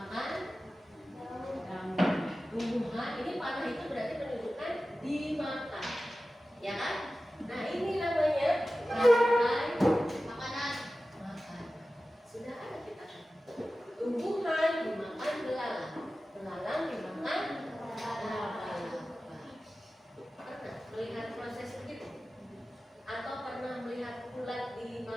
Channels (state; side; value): normal; both; correlation 0.95